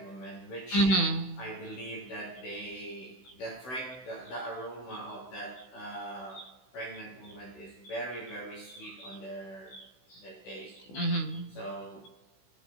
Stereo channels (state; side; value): late; right; 16 ms